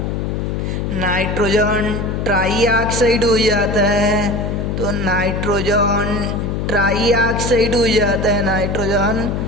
नाइट्रोजन ट्राई ऑक्साइड हो जाता है। तो नाइट्रोजन ट्राई ऑक्साइड हो जाता है, नाइट्रोजन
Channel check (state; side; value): noise; left; hum, 2 dB below the sound